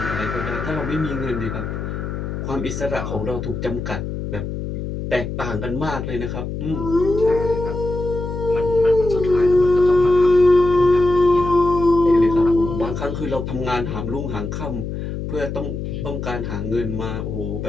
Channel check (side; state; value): left; noise; hum, 5 dB below the sound